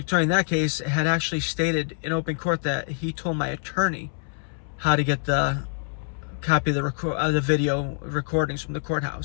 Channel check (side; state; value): right; silent; 61 dB below the other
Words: attorney in that case had actually stated in open court that he told my attorney how to get the copy of the video recordings from the